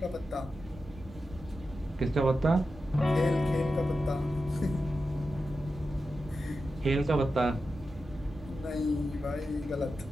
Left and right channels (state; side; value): normal; both; correlation 0.91